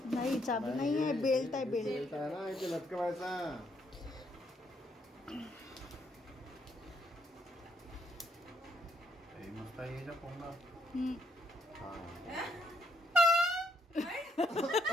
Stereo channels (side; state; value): both; normal; correlation 0.72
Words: नाही, चाबी नाही आहे, बेल्ट आहे, बेल्ट. बेल्ट आहे ना, इथे लटकवायचा. हे मस्त आहे याच्या कोंबडा. हम्म. हा.